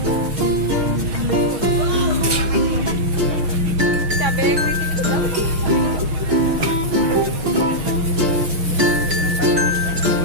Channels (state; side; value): late; left; 6.3 ms